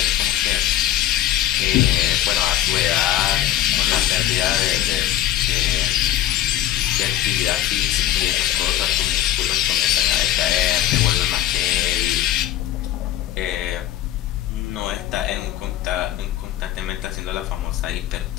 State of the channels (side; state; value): right; quieter; 12.8 dB